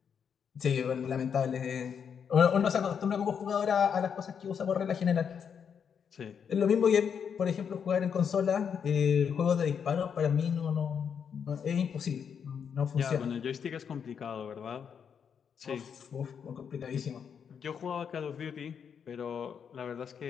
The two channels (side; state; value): right; quieter; 7.2 dB